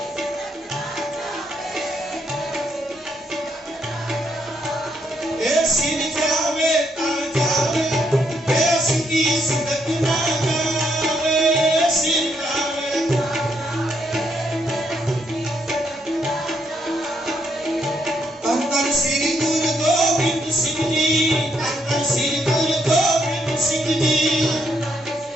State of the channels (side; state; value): both; normal; correlation 0.75